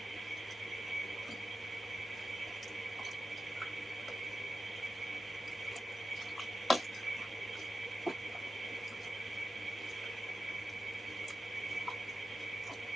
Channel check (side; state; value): both; normal; correlation 0.92